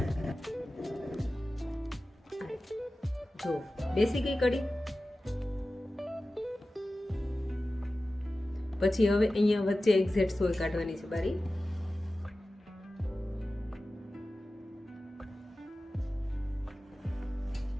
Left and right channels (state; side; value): normal; both; correlation 0.95